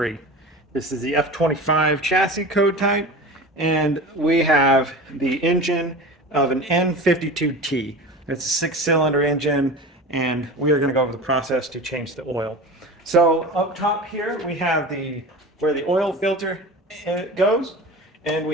This is the F25 chassis code type, and we have the engine of an N52T. It's a 6-cylinder engine, and we are going to go over the process to change the oil. So up top here we have where the oil filter goes, and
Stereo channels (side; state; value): both; normal; correlation 0.32